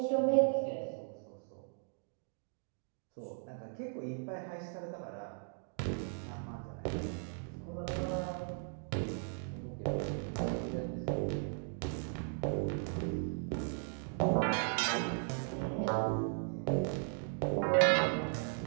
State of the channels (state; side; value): silent; left; 53 dB below the other